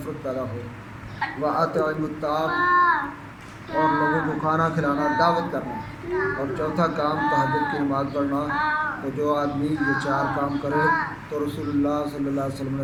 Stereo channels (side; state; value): both; identical; correlation 1.00